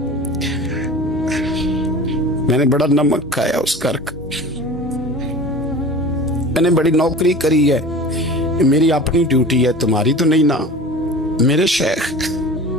मैंने बड़ा नमक खाया उस कर का, मैंने बड़ी नौकरी करी है, मेरी अपनी ड्यूटी है, तुम्हारी तो नहीं ना। मेरे शेख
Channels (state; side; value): normal; both; correlation 0.37